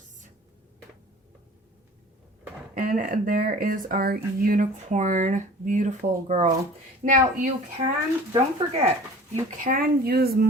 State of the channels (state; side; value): normal; both; correlation 0.44